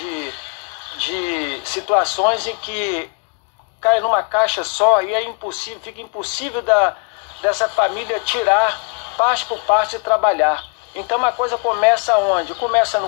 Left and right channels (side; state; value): right; quieter; 37.5 dB